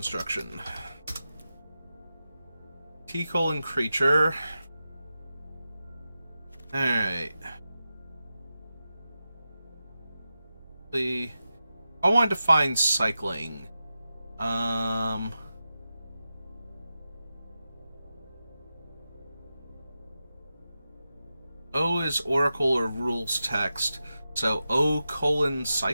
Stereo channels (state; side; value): inverted; both; correlation -0.92